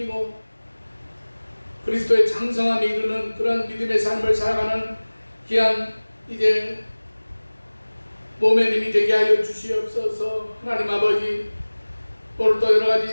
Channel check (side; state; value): both; inverted; correlation -1.00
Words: 그리스도의 장성함에 이르는 그런 믿음의 삶을 살아가는 귀한 이제 몸의 힘이 되게 하여 주시옵소서. 하나님 아버지, 오늘도 여러